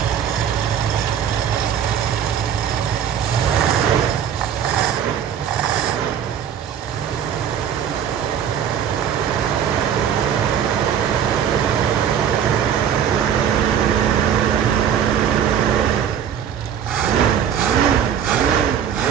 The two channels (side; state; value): left; quieter; 8.7 dB